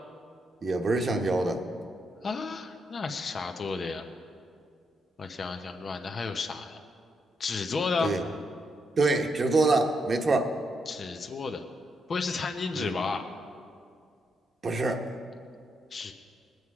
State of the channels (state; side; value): normal; both; correlation 0.80